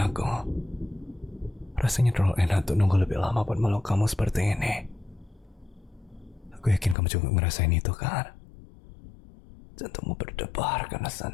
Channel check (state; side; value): drops out; right; at 7.0 s